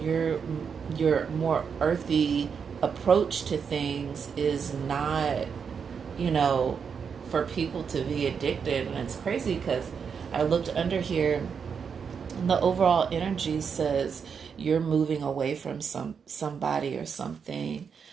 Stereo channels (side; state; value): left; quieter; 6.5 dB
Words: your more earthy approach to things is not, you know, for people to be addicted. And it's crazy because I looked under here and the overall energy says you're moving away from somebody or something.